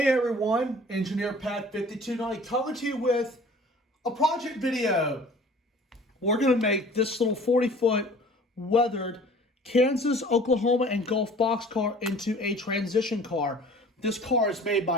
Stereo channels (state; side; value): normal; both; correlation 0.48